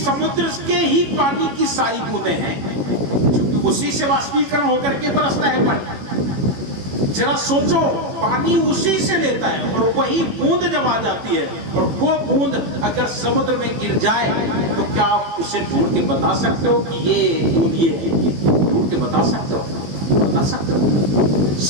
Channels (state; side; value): late; left; 18 ms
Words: के ही पानी की सारी बूंदें हैं, क्योंकि उसी से वाष्पीकरण होकर के बरसता है पानी। जरा सोचो, पानी उसी से लेता है और वही बूंद जब आ जाती है और वो बूंद अगर समुद्र में गिर जाए तो क्या आप उसे ढूंढ के बता सकते हो कि ये बूंद ये है? ढूंढ के बता सकते हो? बता सकते हो?